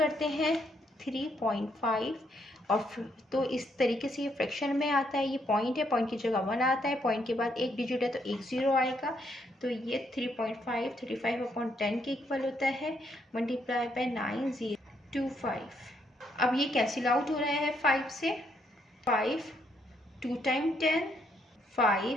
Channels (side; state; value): both; normal; correlation 0.73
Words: हैं 3.5 और तो इस तरीके से ये फ्रैक्शन में आता है। ये पॉइंट है, पॉइंट की जगह 1 आता है, पॉइंट के बाद एक डिजिट है तो 1 ज़ीरो आएगा। तो ये 3.5 35/10 के इक्वल होता है मल्टीप्लाई बाय 9025। अब ये कैंसिल आउट हो रहा है 5 से। 5 2 टाइम 10,